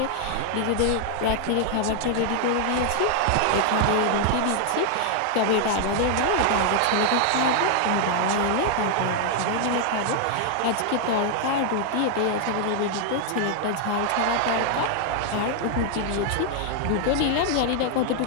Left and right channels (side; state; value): both; different; correlation 0.00